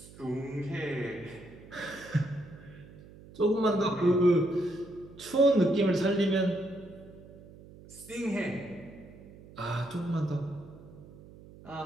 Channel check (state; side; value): noise; right; hum, 19 dB below the sound